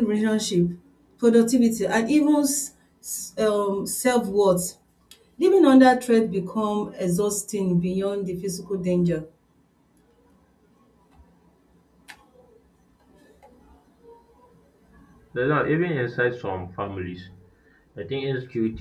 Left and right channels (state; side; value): identical; both; correlation 1.00